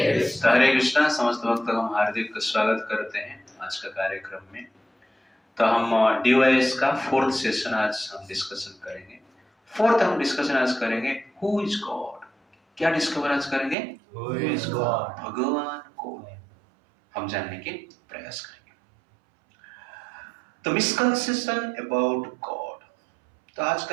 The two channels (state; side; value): drops out; left; at 13.8 s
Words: कृष्णा। हरे कृष्णा। समस्त भक्तों का हम हार्दिक स्वागत करते हैं आज का कार्यक्रम में। तो हम डीवाईएस का फोर्थ सेशन आज हम डिस्कशन करेंगे। हम डिस्कशन आज करेंगे हु इज गॉड। क्या डिस्कवर आज करेंगे? Who is God? भगवान कौन है, हम जानने के प्रयास करेंगे। तो मिसकंसेप्शन अबाउट गॉड। तो